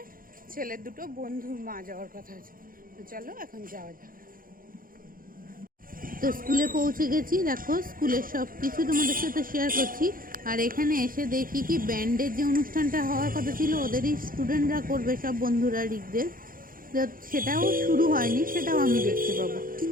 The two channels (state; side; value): late; left; 0.41 ms